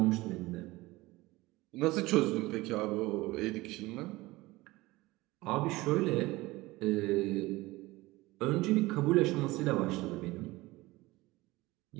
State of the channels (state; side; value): quieter; left; 20.0 dB